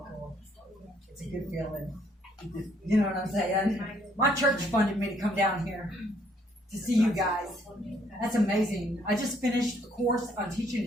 It's a good feeling. You know what I'm saying? My church funded me to come down here to see you guys. That's amazing. I just finished a course on teaching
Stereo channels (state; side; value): normal; both; correlation 0.67